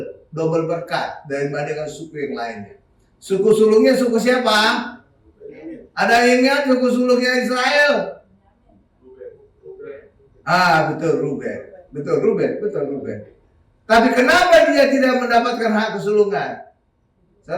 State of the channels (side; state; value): both; identical; correlation 1.00